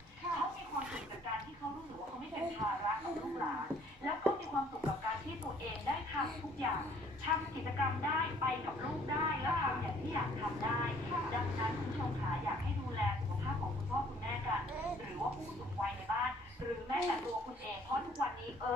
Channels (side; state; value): both; normal; correlation 0.59